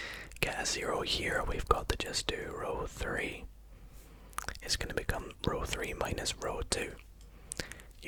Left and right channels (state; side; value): identical; both; correlation 1.00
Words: get a 0 here. We've got to just do row 3. It's going to become row 3 minus row 2.